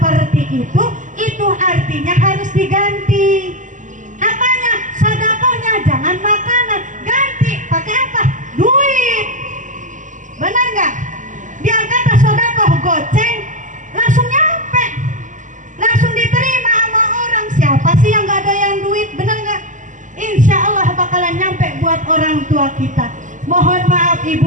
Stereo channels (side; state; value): left; late; 0.37 ms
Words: itu artinya harus diganti. Apanya? Sodakohnya jangan makanan, ganti pakai apa? Duit. Benar nggak? Biar kata sodakoh goceng langsung nyampe, langsung diterima sama orang. Siapa sih yang nggak ada yang duit? Benar nggak? Insya Allah bakalan nyampe buat orang tua kita. Mohon maaf